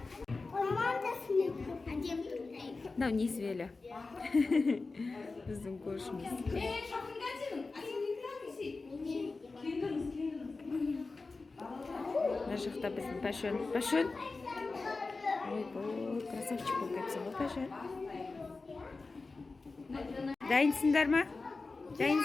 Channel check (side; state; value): right; quieter; 3.8 dB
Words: Мынау несібелі. Біздің көршіміз. Мына жақта біздің Пашон. Пашон? Ой, красавчик болып кетсің ғой, Пашон. Дайынсыңдар ма?